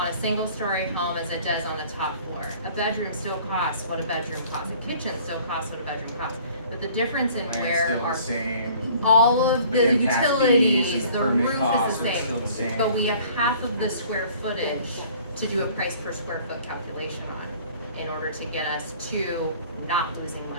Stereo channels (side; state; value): both; inverted; correlation -0.52